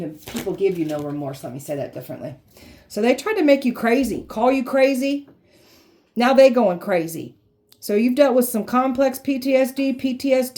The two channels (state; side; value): identical; both; correlation 1.00